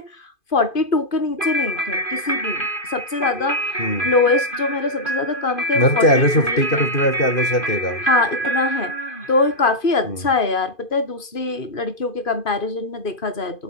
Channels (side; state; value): right; late; 2.5 ms